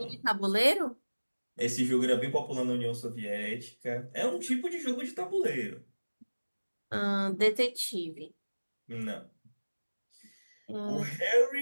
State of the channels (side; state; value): both; inverted; correlation -1.00